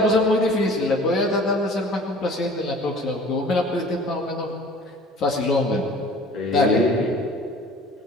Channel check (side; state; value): both; normal; correlation 0.47